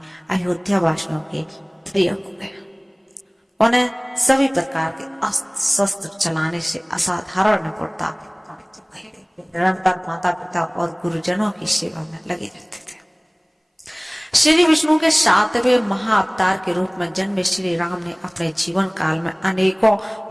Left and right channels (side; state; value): both; identical; correlation 1.00